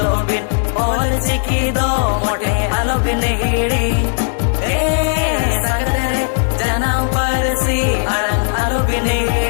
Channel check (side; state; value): right; silent; 62 dB below the other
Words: बिन ओल चिकी दो मोटे आलो बिन हिड़ी ए संगत रे जन्म परसी अड़ंग आलो बिन